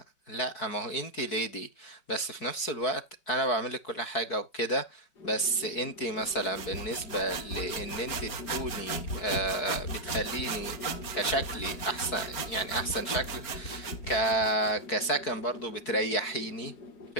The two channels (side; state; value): right; late; 4.6 ms